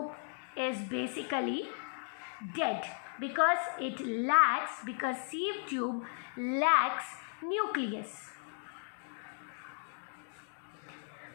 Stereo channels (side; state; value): right; silent; 54 dB below the other